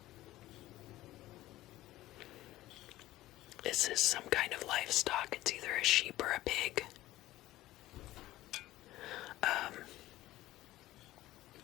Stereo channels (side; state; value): right; quieter; 16.2 dB